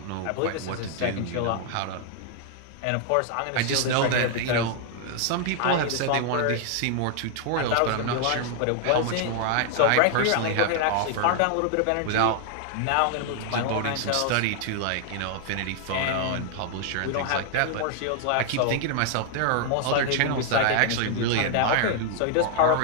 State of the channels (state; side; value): different; both; correlation 0.00